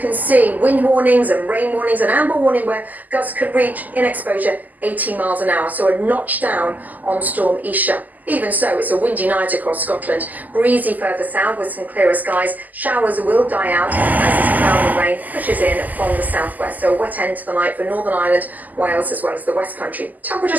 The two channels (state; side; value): late; left; 0.082 ms